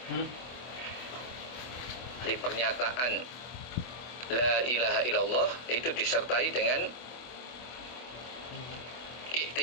Di pernyataan La ilaha illallah itu disertai dengan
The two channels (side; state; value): right; late; 24 ms